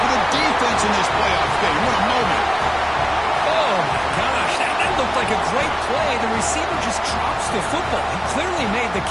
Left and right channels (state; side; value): identical; both; correlation 1.00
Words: the defense in this playoff game. What a moment. Oh, my gosh. That looked like a great play. The receiver just drops the football. He clearly made the